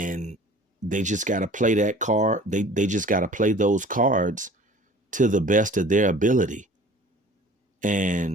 they just got to play that card. They just got to play those cards to the best of their ability.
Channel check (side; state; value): both; normal; correlation 0.46